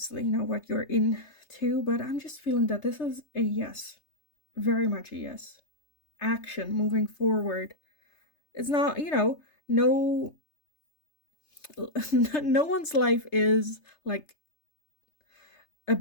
what you're into, but I'm just feeling that this is a yes. Very much a yes. Action, moving forward. It's not, no no one's life is like a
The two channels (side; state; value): right; late; 3.3 ms